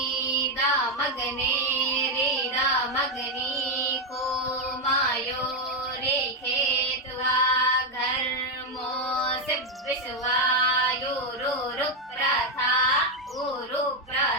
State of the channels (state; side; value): normal; both; correlation 0.05